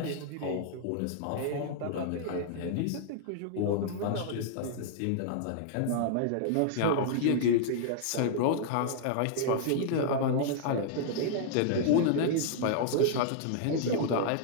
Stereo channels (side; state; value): both; different; correlation -0.01